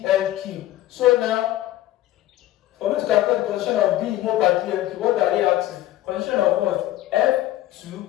cube. So now for me to calculate the concentration of B in mole per dl cube, what are they asking? Concentration of what? F2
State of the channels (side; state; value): right; quieter; 14.5 dB